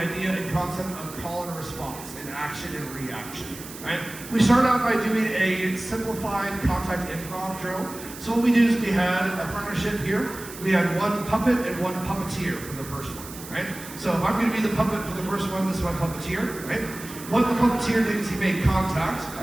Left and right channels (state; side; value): noise; right; hiss, 14 dB below the sound